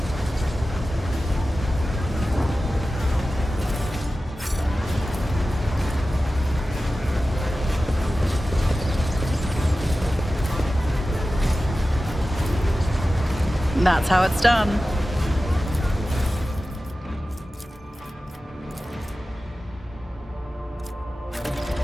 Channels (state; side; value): normal; both; correlation 0.95